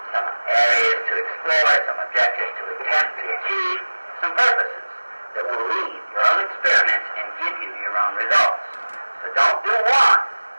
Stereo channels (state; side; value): inverted; both; correlation -1.00